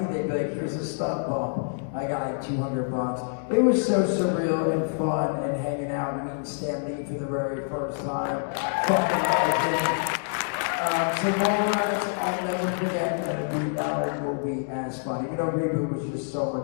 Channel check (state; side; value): silent; right; digital silence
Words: they'd be like, "Here's a stunt bump." I got like $200. It was so surreal and fun, and hanging out and meeting Stan Lee for the very first time. Fucking legend. So Mallrats, I'll never forget that Reboot will be as fun. Even though Reboot was just so